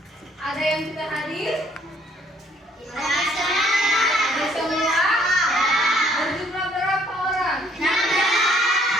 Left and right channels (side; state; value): both; normal; correlation 0.63